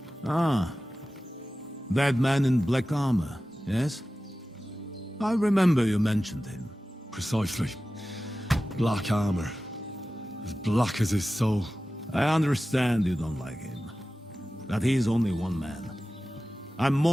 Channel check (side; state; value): both; normal; correlation 0.95